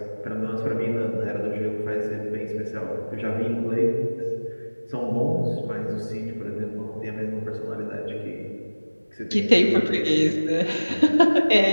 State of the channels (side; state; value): both; inverted; correlation -1.00